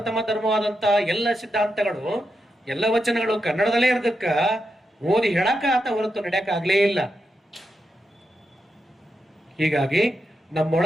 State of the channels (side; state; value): both; normal; correlation 0.86